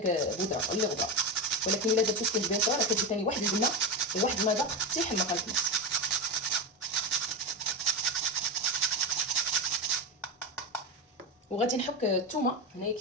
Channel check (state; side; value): normal; both; correlation 0.16